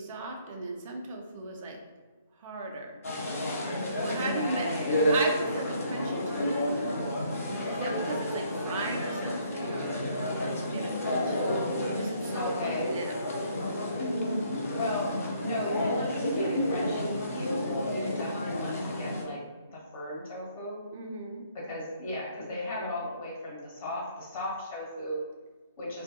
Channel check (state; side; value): inverted; both; correlation -0.65